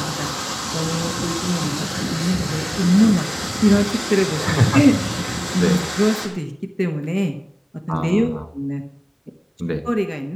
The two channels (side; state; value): both; identical; correlation 1.00